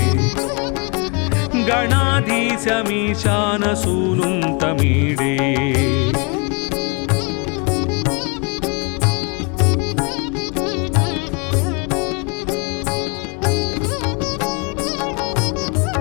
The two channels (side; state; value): right; quieter; 32.6 dB